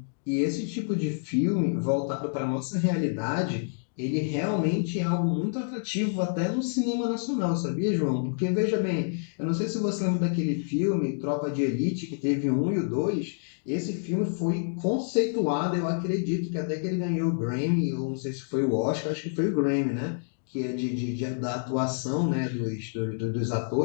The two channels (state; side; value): silent; right; digital silence